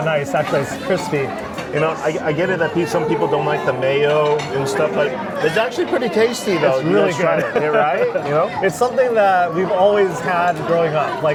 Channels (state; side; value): identical; both; correlation 1.00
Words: nice. Actually, it's crispy. You know, I get it that some people don't like the mayo and stuff, but it's actually pretty tasty though. It's You really guys try good. it, yeah, right? You know? It's something that we've always had growing up.